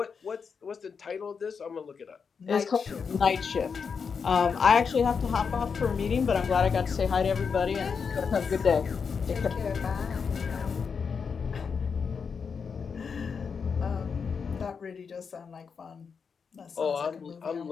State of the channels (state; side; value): quieter; right; 5.9 dB